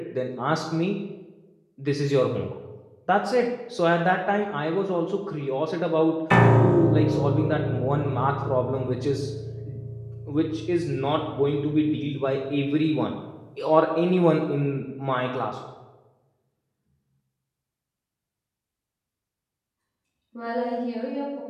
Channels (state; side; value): identical; both; correlation 1.00